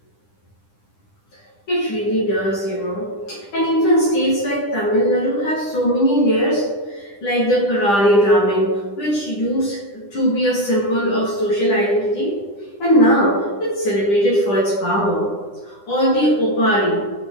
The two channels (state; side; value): late; right; 10 ms